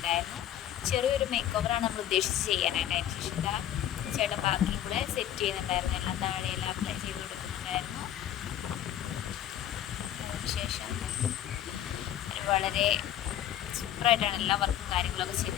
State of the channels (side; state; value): right; quieter; 11.5 dB